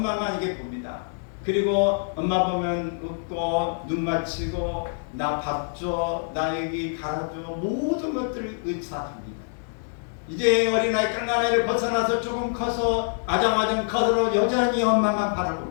이게 봅니다. 그리고 엄마 보면 웃고 눈 맞추고 나 밥 줘, 나 여기 갈아줘, 모든 것들을 의사합니다. 이제 어린아이 깡나이를 벗어나서 조금 커서 아장아장 커서 여전히 엄마만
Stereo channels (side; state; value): right; silent; 58 dB below the other